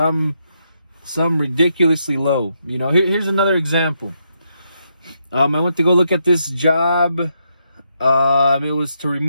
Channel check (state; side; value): inverted; both; correlation -0.80